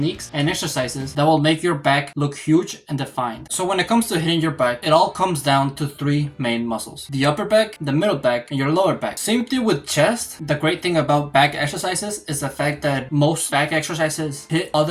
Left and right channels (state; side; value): identical; both; correlation 1.00